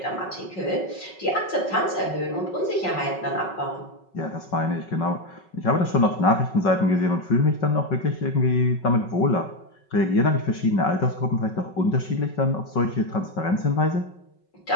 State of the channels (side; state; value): right; late; 5.4 ms